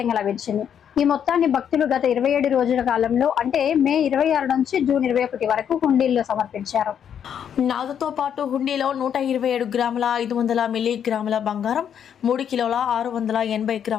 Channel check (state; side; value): quieter; right; 8.6 dB